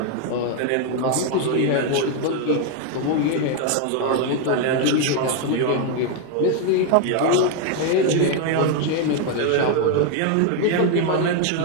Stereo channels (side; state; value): both; different; correlation 0.01